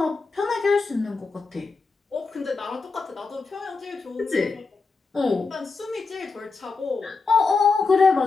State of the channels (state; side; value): quieter; right; 4.4 dB